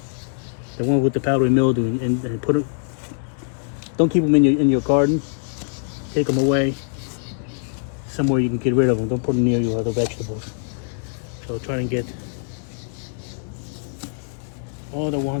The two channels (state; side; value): silent; right; digital silence